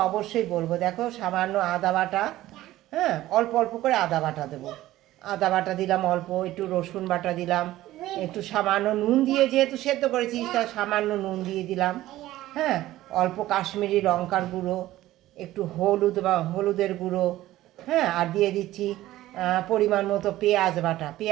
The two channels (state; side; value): quieter; left; 15.4 dB